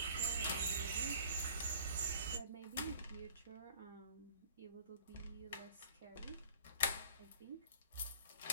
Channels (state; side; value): inverted; both; correlation -0.49